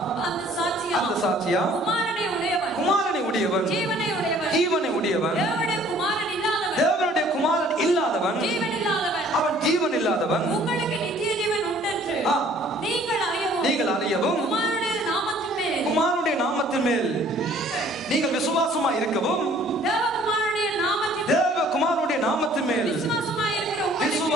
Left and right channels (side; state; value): both; normal; correlation 0.56